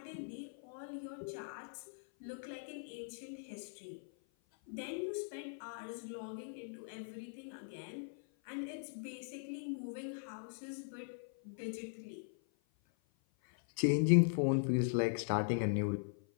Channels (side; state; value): right; silent; 51 dB below the other